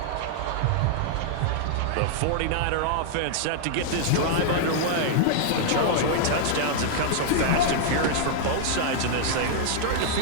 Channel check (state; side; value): different; both; correlation -0.01